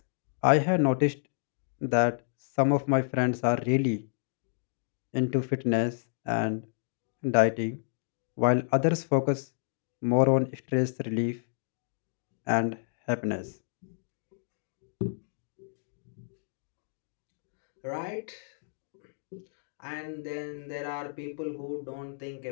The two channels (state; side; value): silent; right; digital silence